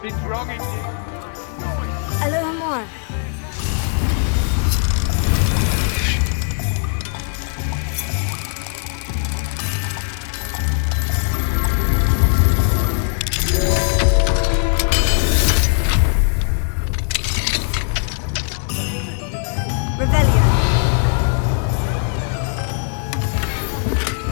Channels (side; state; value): right; silent; 59 dB below the other